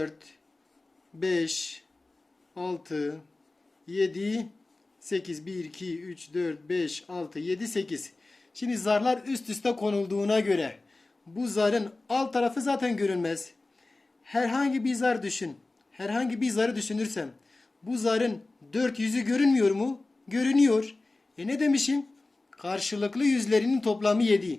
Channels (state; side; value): quieter; right; 3.2 dB